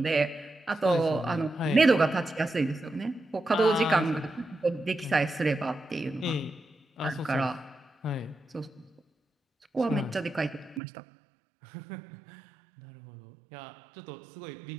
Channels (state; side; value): drops out; left; at 10.8 s